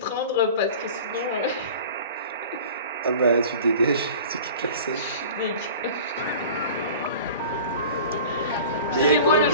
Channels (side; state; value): both; inverted; correlation -0.41